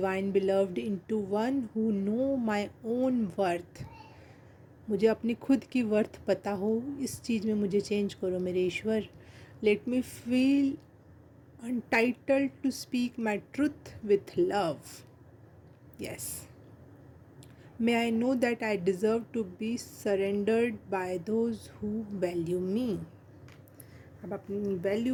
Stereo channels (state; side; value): identical; both; correlation 1.00